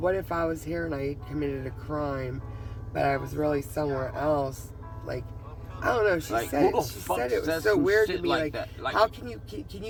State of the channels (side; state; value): both; identical; correlation 1.00